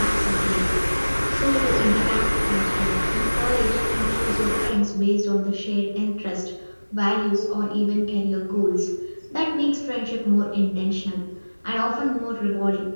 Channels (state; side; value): inverted; both; correlation -1.00